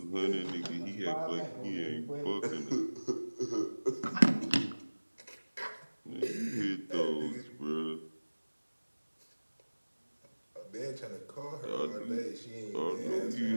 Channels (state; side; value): inverted; both; correlation -1.00